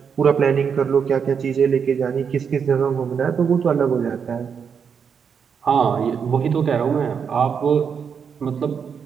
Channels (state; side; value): quieter; left; 6.8 dB